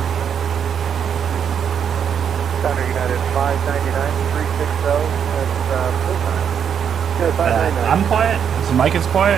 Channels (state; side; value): quieter; left; 7.9 dB